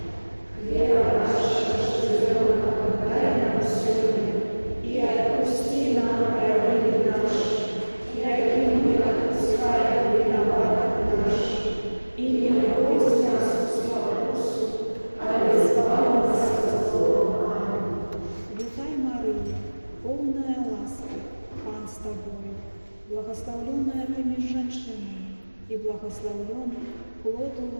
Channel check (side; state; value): both; inverted; correlation -1.00